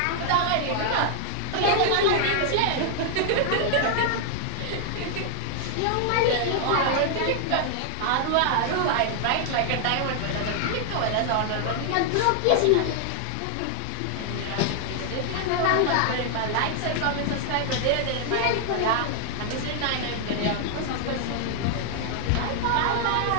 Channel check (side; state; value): both; different; correlation 0.00